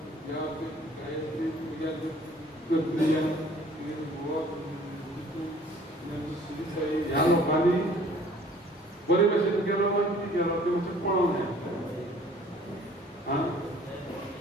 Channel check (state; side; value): normal; both; correlation 0.53